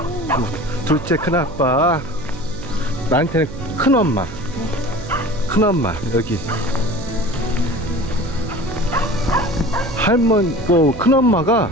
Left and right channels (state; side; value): noise; right; hum, 12 dB below the sound